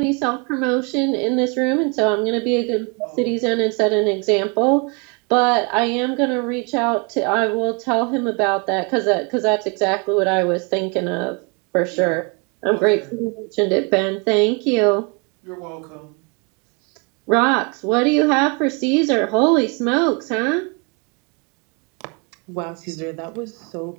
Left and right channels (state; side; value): quieter; left; 33.3 dB